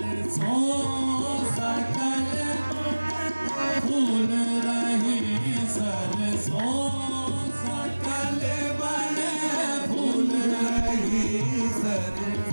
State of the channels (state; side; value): inverted; both; correlation -1.00